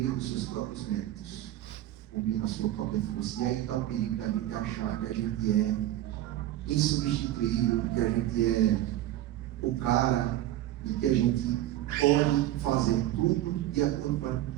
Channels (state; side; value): quieter; left; 14.0 dB